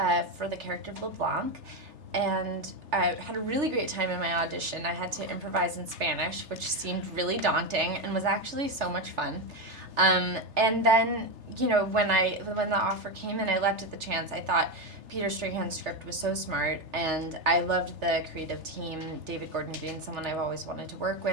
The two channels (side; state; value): left; late; 3.3 ms